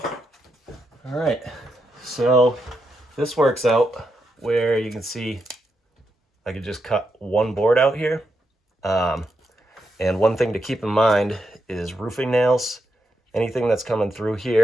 right, so this works out where you can see I could just cut one board out here. And one thing to keep in mind is roofing nails. Anything that's coming through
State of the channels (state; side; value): normal; both; correlation 0.83